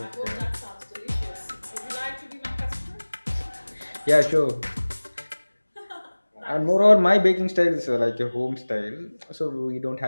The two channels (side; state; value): both; inverted; correlation -1.00